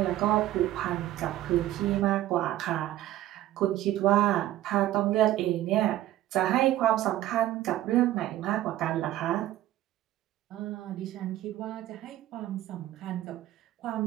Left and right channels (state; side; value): quieter; left; 14.1 dB